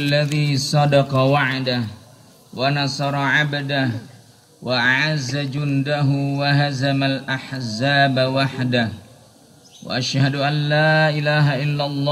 صدق وعده ونصر عبده وأعز جنده وهزم الأحزاب وحده وأشهد أن لا إله إلا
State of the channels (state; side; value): identical; both; correlation 1.00